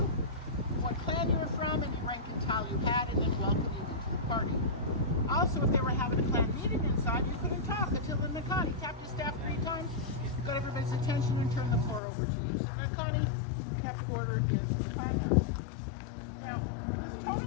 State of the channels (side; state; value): right; drops out; at 12.0 s